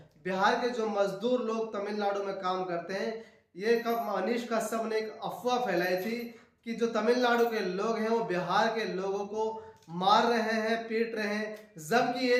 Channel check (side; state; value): both; identical; correlation 1.00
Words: बिहार के जो मजदूर लोग तमिलनाडु में काम करते हैं, ये कब मनीष कश्यप ने एक अफवाह फैलाई थी कि जो तमिलनाडु के लोग हैं वो बिहार के लोगों को मार रहे हैं, पीट रहे हैं, जबकि